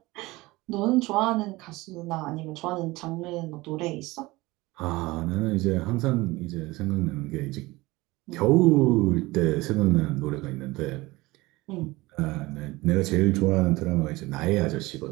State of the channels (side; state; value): left; quieter; 20.8 dB